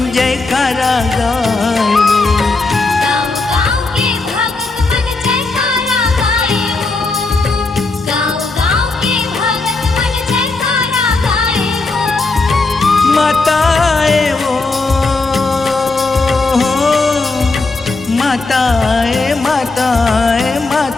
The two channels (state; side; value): quieter; right; 3.6 dB